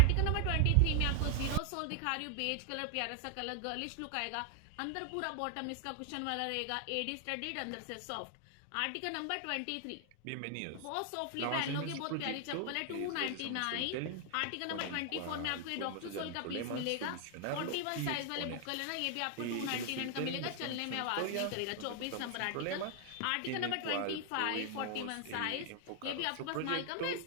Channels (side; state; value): both; different; correlation 0.00